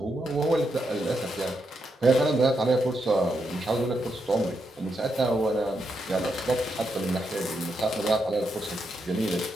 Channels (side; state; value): both; normal; correlation 0.82